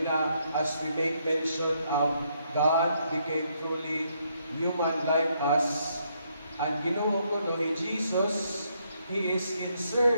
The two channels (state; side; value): inverted; both; correlation -0.74